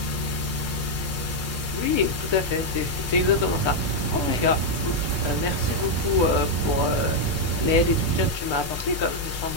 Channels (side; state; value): both; normal; correlation 0.00